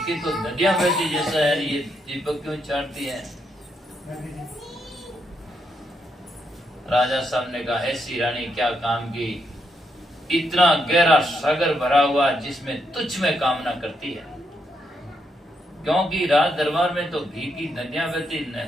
की तो नदियां बहती जैसा है, ये दीपक क्यों चाटती है? राजा साहब ने कहा, ऐसी रानी क्या काम की, इतना गहरा सागर भरा हुआ जिसमें तुच्छ में कामना करती है। क्योंकि राज दरबार में तो घी की नदियां बहती,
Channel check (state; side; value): normal; both; correlation 0.79